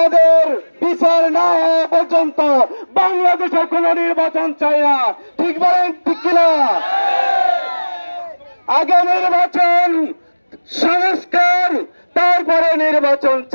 বিচার না হওয়া পর্যন্ত বাংলাদেশে কোন নির্বাচন চাই না। ঠিক বলেন, ঠিক কিনা? আগে নির্বাচন, সংস্কার, তারপরে নির্বাচন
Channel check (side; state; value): both; inverted; correlation -1.00